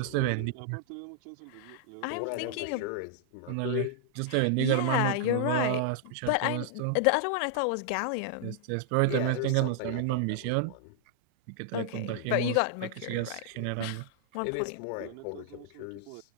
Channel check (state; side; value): different; both; correlation -0.01